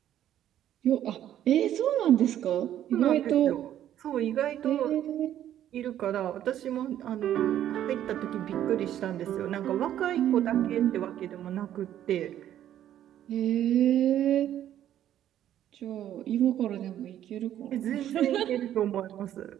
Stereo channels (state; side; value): quieter; left; 11.4 dB